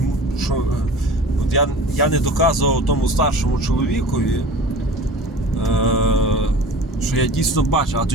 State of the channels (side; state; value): both; normal; correlation 0.40